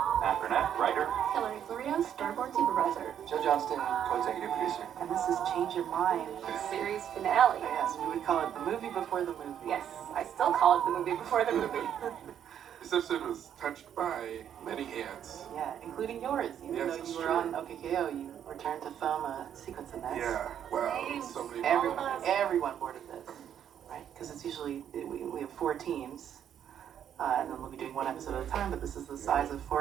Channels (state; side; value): quieter; left; 9.5 dB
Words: Burnett, writer. Hilary Florido, storyboard supervisor. Johnston, co-executive producer. And this is Change Your Mind. Series finale. Yes, we would call it the movie before the movie. Yes, I still call it the movie before the movie. This episode was touched by many hands. Yeah, including yours. Even though you were on OKKO, you returned to film a sequence in this. Yeah, wow, so many Everyone boarded this, right? Because it's usually, we have 4 teams, and then we'll be doing 1 episode at a time, but this is the size of